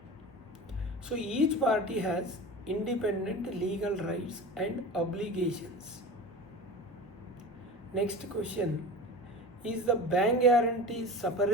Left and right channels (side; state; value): both; normal; correlation 0.31